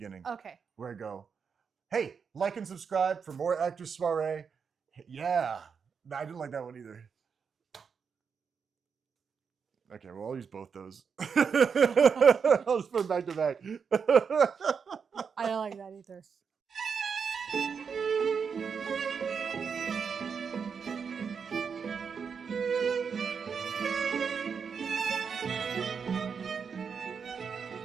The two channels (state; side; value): quieter; left; 6.2 dB